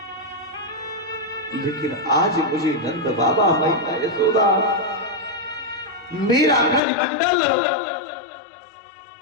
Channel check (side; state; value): right; drops out; at 6.8 s